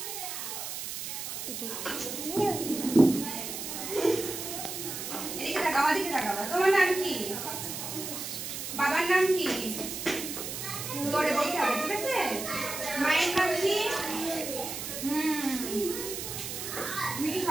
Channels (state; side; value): noise; right; hiss, 6 dB below the sound